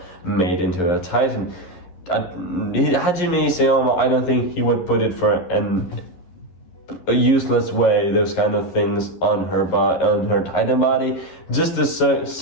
made into a Titan. Hajime Isayama, I don't think he would put it for a useless way, those kind of things on her Titan body, just to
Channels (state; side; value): late; right; 11 ms